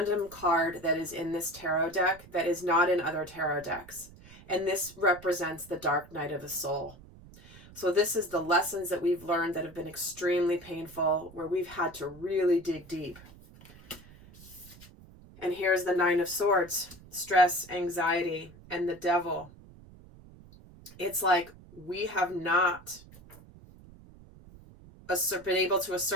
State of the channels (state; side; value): noise; right; rumble, 21 dB below the sound